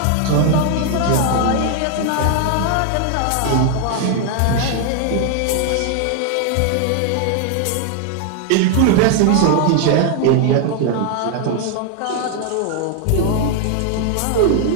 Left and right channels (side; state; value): both; different; correlation 0.00